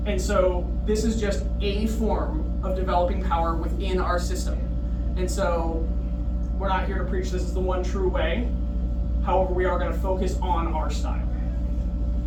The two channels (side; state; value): both; identical; correlation 1.00